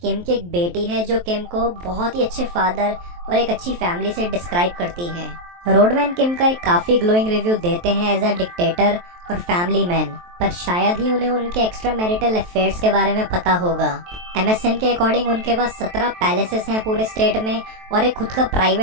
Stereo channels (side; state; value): left; late; 23 ms